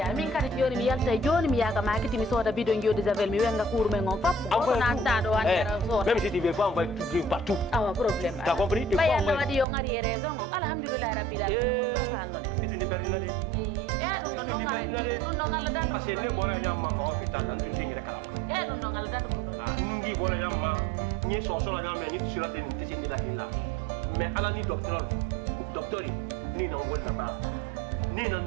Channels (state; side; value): drops out; left; at 9.7 s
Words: min kadi joni mi yalta joni mi yaga makiti mi soda bidon jodi javel mi wenga cour men on fap ko na tado andera soda même si tu veux pas envoyer tout partout. Ah problème. Tu as compris? Ba yalla wadi yo ngari raison alhamdulillah rabbil alamin do salno de. Itu ni bernade. Dum non ngari. Dum non ngala dan. Parce que ne bora nyamma ko hôpital lan tun tingere kala. Dum non ngala dan dum non. Ah nungi bora nyamma ni so so la nyamma ni sur la tene tisini la kila. Mais ala ni docteur ni non wol la ba. Ni non